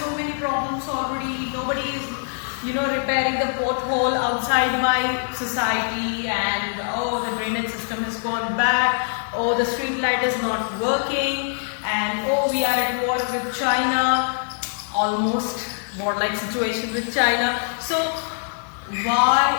so many problems already. Nobody is, repairing the pothole outside my society, and oh, the drainage system has gone bad. Oh, the street light is not working, and oh, we are at war with China. Almost war-like situation with China. So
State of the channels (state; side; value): silent; right; 62 dB below the other